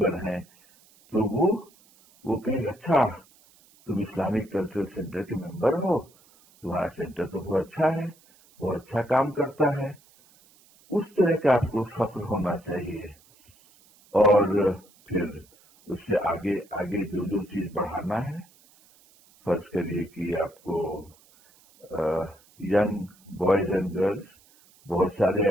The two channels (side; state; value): right; noise; hiss, 29 dB below the sound